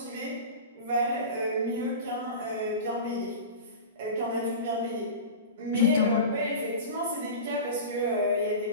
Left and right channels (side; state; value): both; inverted; correlation -0.30